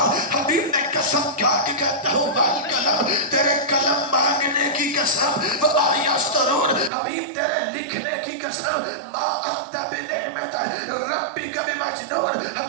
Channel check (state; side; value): drops out; left; at 6.9 s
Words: حبیب نے قسم کھا کے کہتا ہوں والقلم، تیرے قلم مانگنے کی قسم، وما یسطرون، حبیب تیرے لکھنے کی قسم، ما انت بنعمت ربک بمجنون،